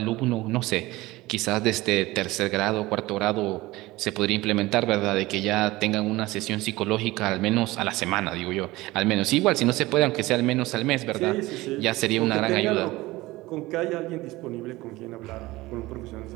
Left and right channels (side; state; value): left; quieter; 19.4 dB